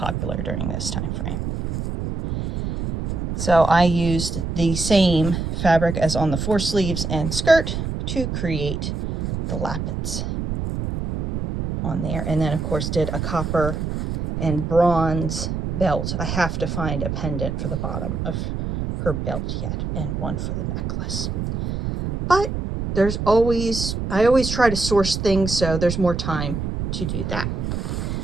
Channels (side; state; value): right; noise; rumble, 3 dB below the sound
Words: during this time frame. So I used the same fabric as on the four sleeves and skirt to create the lappets on there. And then of course did a copper and bronze belt. I have to find a pendant for the bottom of her belt yet, and one for the necklace. But I always try to source things so there's more time to do that.